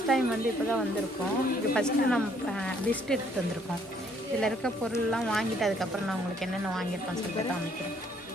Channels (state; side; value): normal; both; correlation 0.65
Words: டைம் வந்து இப்போ தான் வந்திருக்கோம். இது ஃபஸ்ட்டு நம்ம லிஸ்ட் எடுத்துகிட்டு வந்திருக்கோம். இதில் இருக்க பொருள்லாம் வாங்கிட்டு அதுக்கப்புறம் நான் உங்களுக்கு என்னென்ன வாங்கியிருக்கோன்னு சொல்லிட்டு காமிக்கிறேன்.